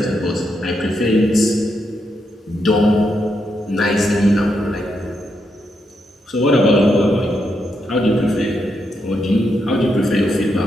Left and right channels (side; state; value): both; normal; correlation 0.81